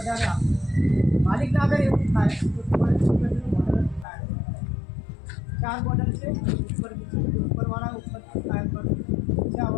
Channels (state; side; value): drops out; right; at 4.0 s